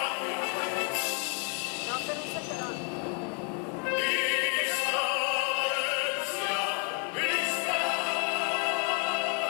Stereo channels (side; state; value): right; quieter; 39.3 dB